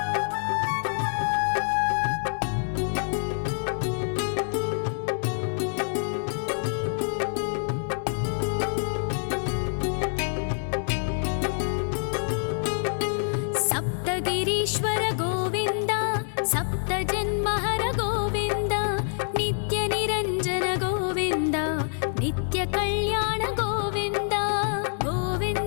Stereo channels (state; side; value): silent; right; 61 dB below the other